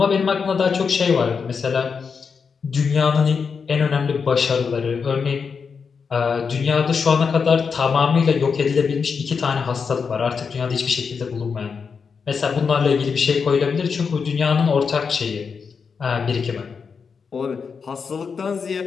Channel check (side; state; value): right; quieter; 5.7 dB